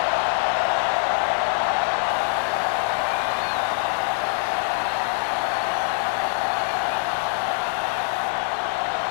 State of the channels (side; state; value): right; silent; digital silence